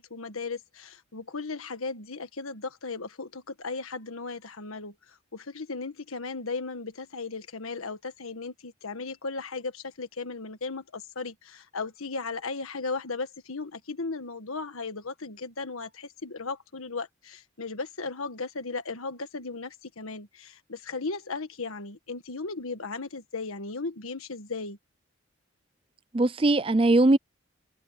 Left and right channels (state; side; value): normal; both; correlation 0.32